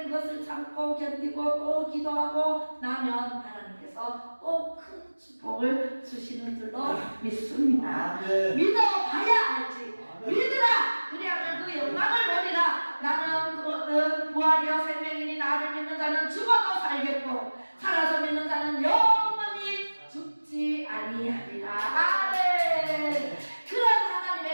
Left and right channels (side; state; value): both; inverted; correlation -1.00